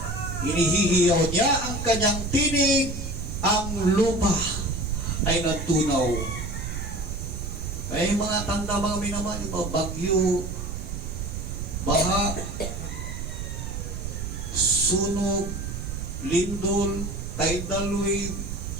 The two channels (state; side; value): noise; right; rumble, 6 dB below the sound